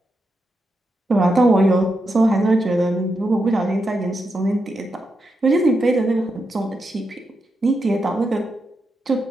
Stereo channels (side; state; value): both; normal; correlation 0.85